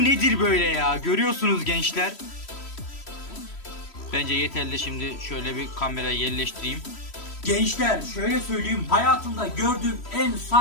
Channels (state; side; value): late; right; 3.1 ms